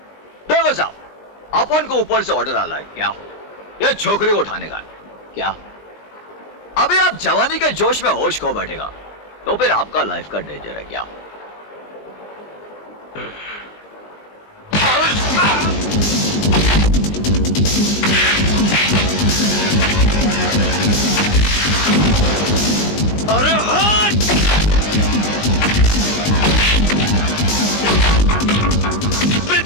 देखो साहब, अपन को ऊपर से ऑर्डर आ रहा है क्या? ये छोकरी को उठाने का है क्या? अभी आप जवानी के जोश में होश खो बैठेगा तो फिर आपका लाइफ का डेंजर है क्या? अरे हट!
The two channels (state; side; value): late; right; 20 ms